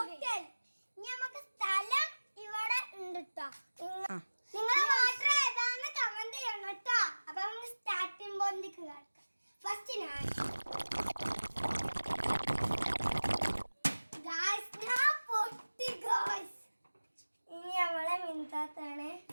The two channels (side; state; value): both; inverted; correlation -1.00